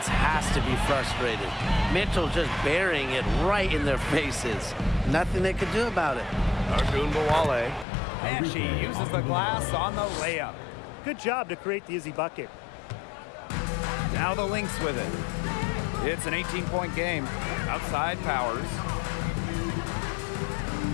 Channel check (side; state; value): right; drops out; at 7.9 s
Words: has to be frustrated. Mitchell just burying it right in their faces. Nothing they could do about it. Agumbawale. And she uses the glass on the layup. Good job to create the easy bucket. Now the Lynx with it. It's an 18-point game. Outside Powers.